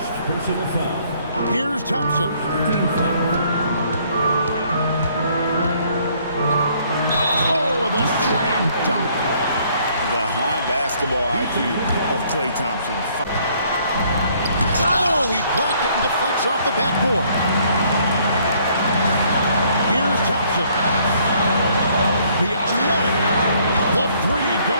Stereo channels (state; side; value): inverted; both; correlation -0.64